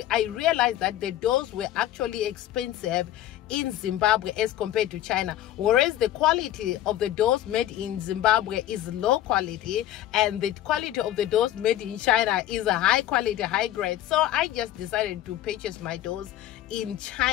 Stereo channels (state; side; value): quieter; right; 13.1 dB